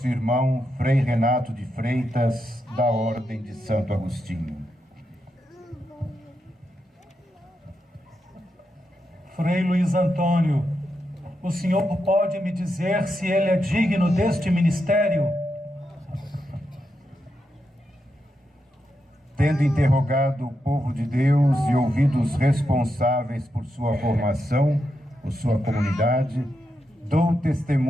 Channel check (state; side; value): normal; both; correlation 0.85